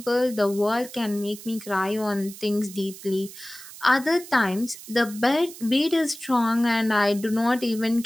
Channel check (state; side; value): noise; right; hiss, 16 dB below the sound